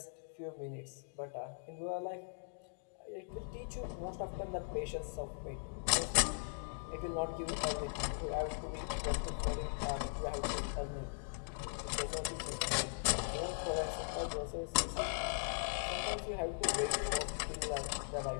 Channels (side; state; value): right; silent; digital silence